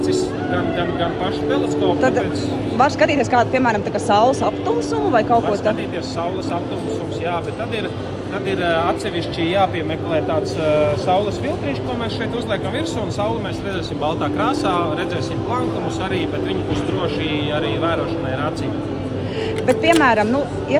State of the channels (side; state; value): both; identical; correlation 1.00